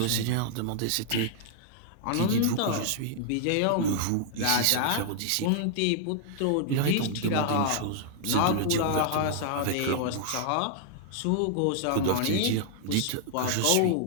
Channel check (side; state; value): both; different; correlation -0.01